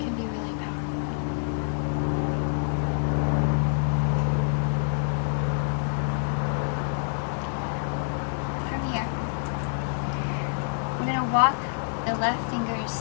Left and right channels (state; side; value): silent; right; digital silence